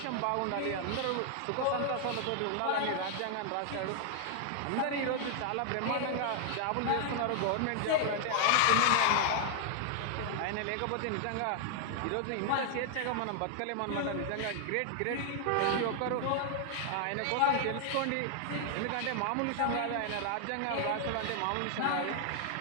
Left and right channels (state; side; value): different; both; correlation 0.00